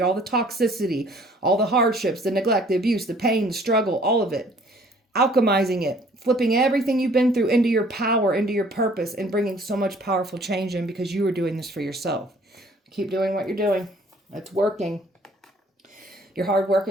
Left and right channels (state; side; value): normal; both; correlation 0.57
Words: all the toxicity, all the hardships, the neglect, the abuse, the pain, the struggle, all of it. Alchemizing it, flipping everything you've been through into your power, into your purpose, and bringing so much powerful change in because you are doing this for yourself. Keep doing what you're doing. It's working. Your hard work